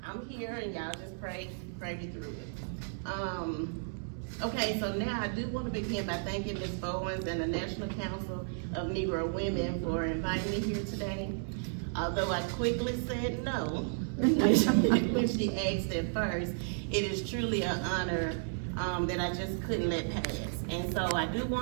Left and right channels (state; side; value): silent; left; digital silence